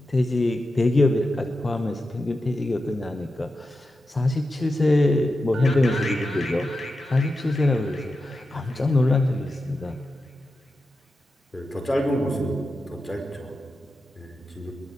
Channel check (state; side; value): normal; both; correlation 0.90